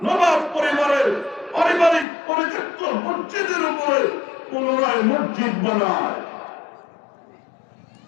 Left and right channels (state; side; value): drops out; right; at 2.1 s